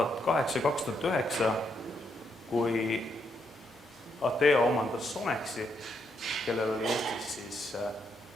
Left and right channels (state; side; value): normal; both; correlation 0.78